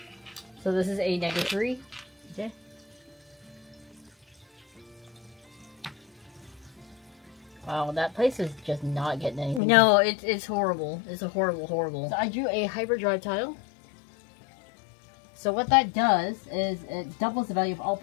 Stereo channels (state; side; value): drops out; right; at 9.6 s